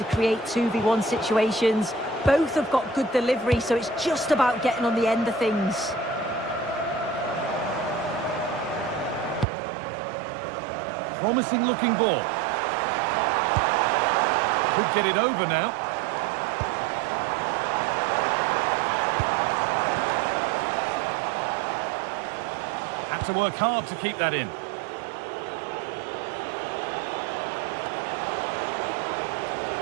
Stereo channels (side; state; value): left; drops out; at 9.5 s